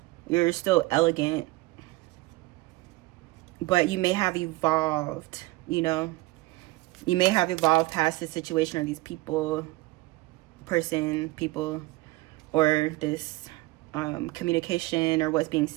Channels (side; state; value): left; quieter; 20.3 dB